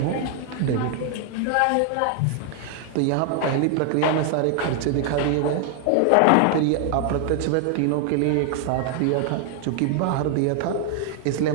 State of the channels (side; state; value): both; different; correlation 0.00